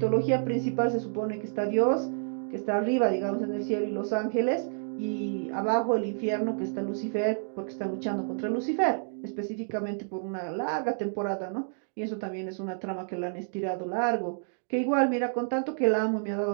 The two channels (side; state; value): left; silent; digital silence